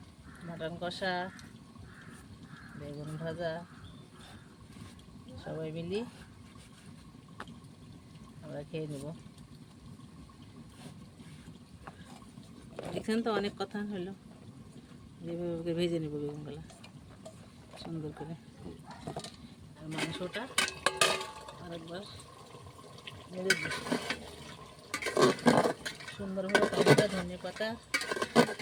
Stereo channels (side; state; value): both; identical; correlation 1.00